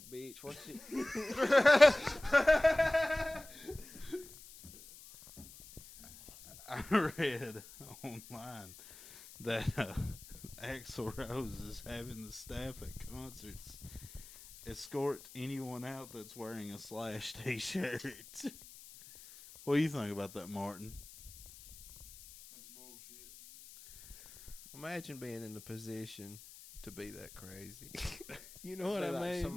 bitch. What's it? I read online that Axl Rose is having the staff at concerts escort anyone out that's wearing a Slash t-shirt. What do you think about that, Martin? That's bullshit. Imagine being in the position to be that crazy. You know what I Like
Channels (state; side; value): noise; left; hiss, 18 dB below the sound